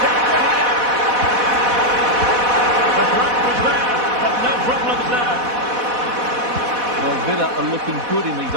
danger here. The threat was there, but no problems there. Well, Villa are looking good in these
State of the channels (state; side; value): late; left; 4.1 ms